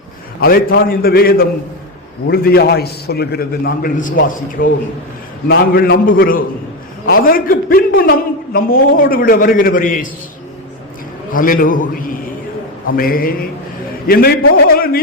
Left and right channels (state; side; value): normal; both; correlation 0.13